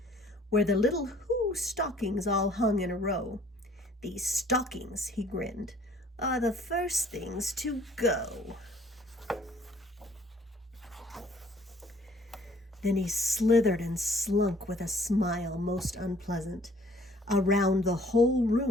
where the little Who stockings all hung in a row. "These stockings," he grinned, "are the first things to go." Then he slithered and slunk with a smile most unpleasant around the whole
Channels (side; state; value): both; normal; correlation 0.58